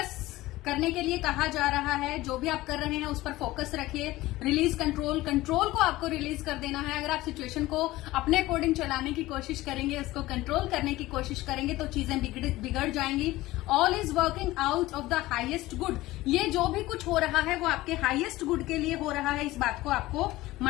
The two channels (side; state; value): right; quieter; 17.9 dB